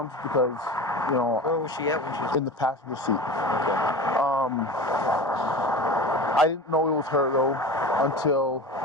because, you know. Where was she at when she was in the passenger seat? Okay. I didn't know it was her though until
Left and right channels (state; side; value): normal; both; correlation 0.32